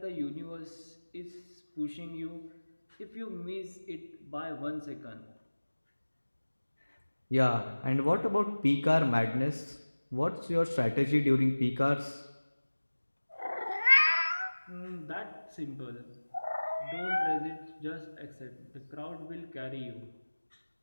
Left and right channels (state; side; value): inverted; both; correlation -1.00